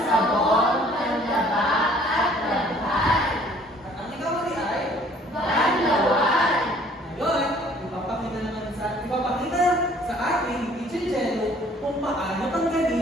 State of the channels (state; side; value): normal; both; correlation 0.56